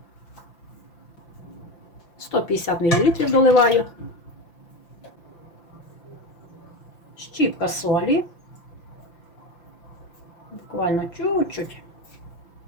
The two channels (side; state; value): right; late; 5.9 ms